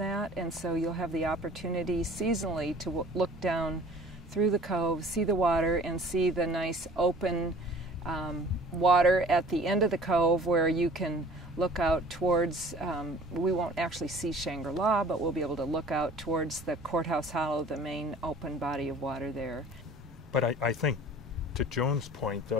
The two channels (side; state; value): both; normal; correlation 0.48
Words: and so you'll have the opportunity seasonally to look down through the cove, see the water, and see the nice open water at the end of the cove where you can look out towards, we won't actually see Shangri-La, but we'll be able to look out towards the Courthouse Hollow, the main open body of water there. But I think, to Joan's point,